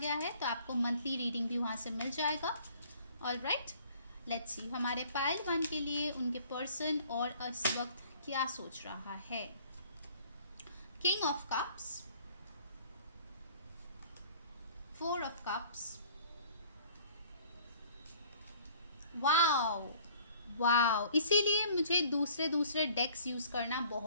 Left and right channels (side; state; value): both; inverted; correlation -0.54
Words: है, तो आपको मंथली रीडिंग भी वहाँ से मिल जाएगा। ऑलराइट, लेट्स सी हमारे पाइल 1 के लिए उनके पर्सन और इस वक्त क्या सोच रहा है। King of cups, 4 of cups, wow wow, इसीलिए मुझे दूसरे डेक्स यूज़ करना